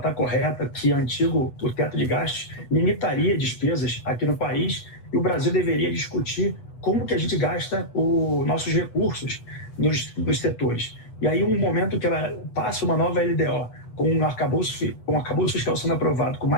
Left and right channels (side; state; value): right; late; 8.1 ms